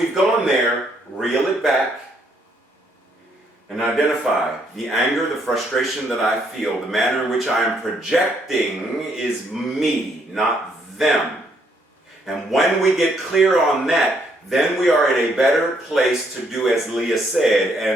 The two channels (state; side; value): normal; both; correlation 0.71